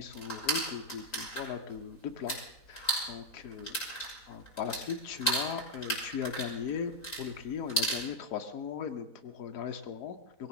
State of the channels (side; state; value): right; late; 3.8 ms